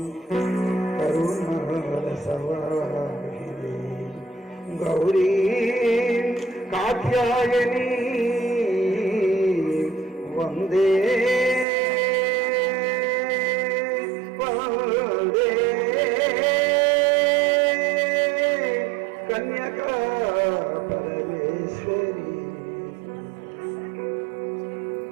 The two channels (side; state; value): left; drops out; at 11.7 s